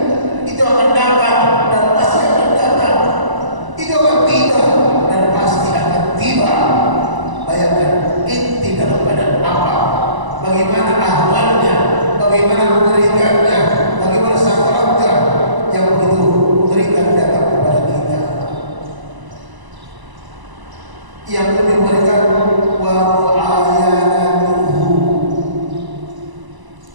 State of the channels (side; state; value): left; late; 1.0 ms